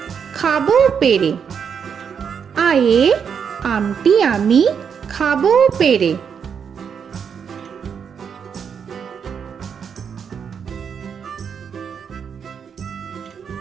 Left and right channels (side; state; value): left; quieter; 7.1 dB